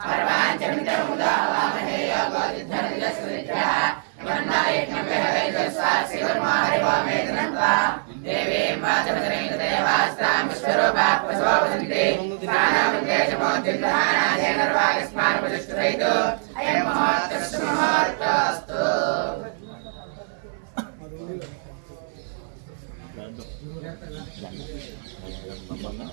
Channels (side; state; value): left; silent; digital silence